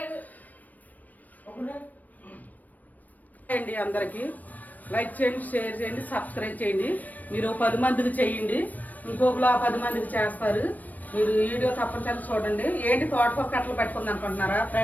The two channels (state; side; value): late; right; 0.081 ms